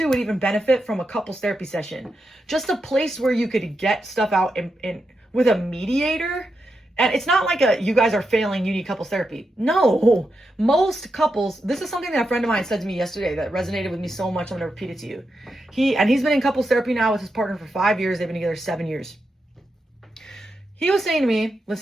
would even benefit from a couples therapy session. Just a place where you could get stuff out in with a mediator. And it's not like you guys are failing, you need couples therapy. No, most couples, this is something that a friend of mine said to me yesterday that resonated with me so much, I'm going to repeat it to you. He's been in couples therapy now with his partner for 5 years. They've been together 7 years. He was saying to me,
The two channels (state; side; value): normal; both; correlation 0.86